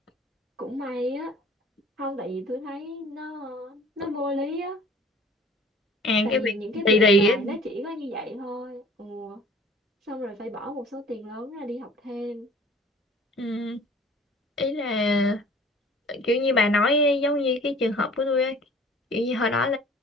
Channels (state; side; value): normal; both; correlation 0.49